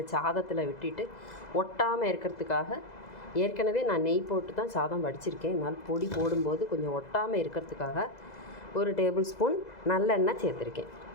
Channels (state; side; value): late; right; 2.0 ms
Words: சாதத்தில் விட்டுட்டு ஒட்டாமல் இருக்கிறதுக்காக, ஏற்கனவே நான் நெய் போட்டு தான் சாதம் வடிச்சிருக்கேன், அதனால் பொடி போடும்போது கொஞ்சம் ஒட்டாமல் இருக்கிறதுக்காக 1 டேபிள் ஸ்பூன் நல்லெண்ணெய் சேர்த்துருக்கேன்.